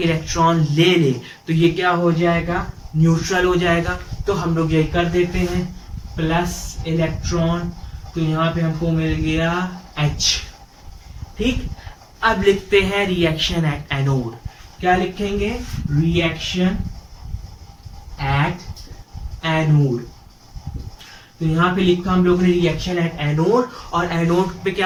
इलेक्ट्रॉन ले ले तो ये क्या हो जाएगा, न्यूट्रल हो जाएगा। तो हम लोग ये कर देते हैं प्लस इलेक्ट्रॉन, तो यहाँ पे हमको मिल गया H। ठीक, अब लिखते हैं रिएक्शन एट एनोड। क्या लिखेंगे, रिएक्शन एट एनोड। तो यहाँ पे लिखा हम लोगों ने रिएक्शन एट एनोड, और एनोड पे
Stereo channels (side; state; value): both; identical; correlation 1.00